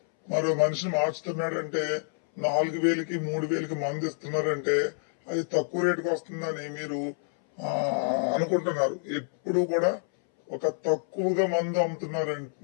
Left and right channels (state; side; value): silent; right; 60 dB below the other